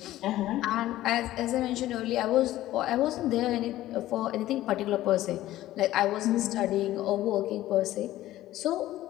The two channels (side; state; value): right; quieter; 14.9 dB